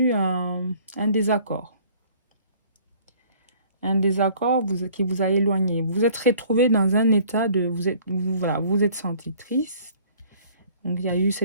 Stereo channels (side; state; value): both; inverted; correlation -0.54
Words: un désaccord. Un désaccord qui vous a éloigné. Vous êtes retrouvé dans un état de... Vous êtes senti triste. Donc, il y a eu